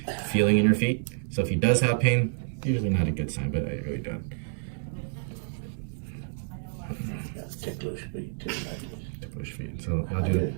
feeling in your feet. So if he does have pain, usually not a good sign, but I really don't. Ticklish feet too. Ticklish feet. So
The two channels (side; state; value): left; silent; 59 dB below the other